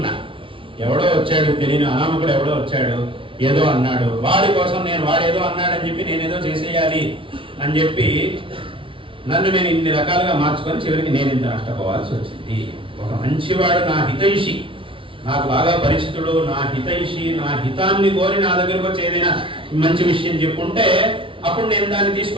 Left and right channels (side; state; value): left; late; 0.25 ms